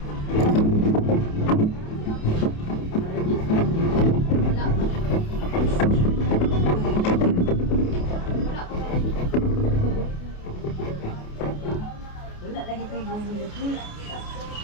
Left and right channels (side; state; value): right; late; 28 ms